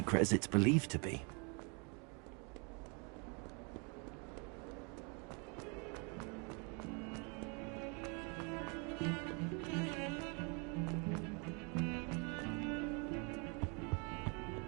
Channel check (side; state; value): left; quieter; 33.9 dB